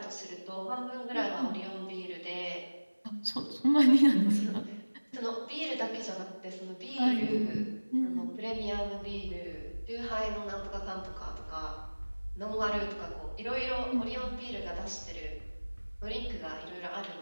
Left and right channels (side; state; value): both; inverted; correlation -1.00